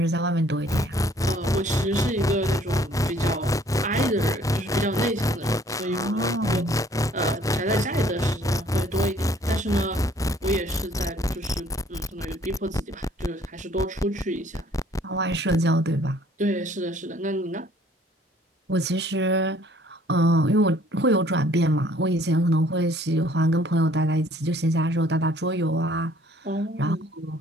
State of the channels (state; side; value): normal; both; correlation 0.59